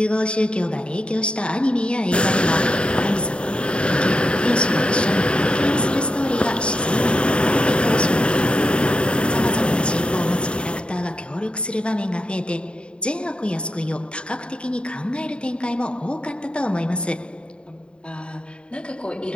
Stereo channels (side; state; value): right; late; 0.054 ms